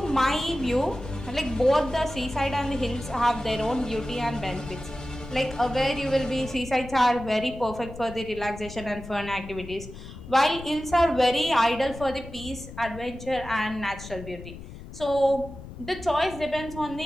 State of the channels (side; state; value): left; noise; rumble, 13 dB below the sound